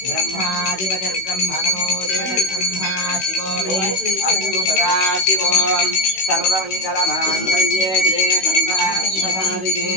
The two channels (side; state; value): right; late; 16 ms